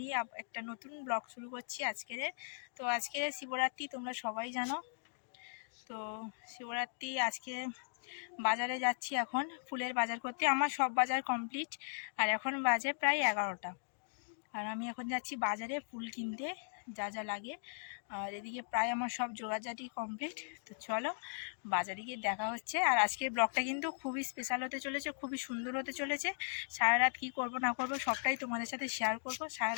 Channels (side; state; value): right; silent; digital silence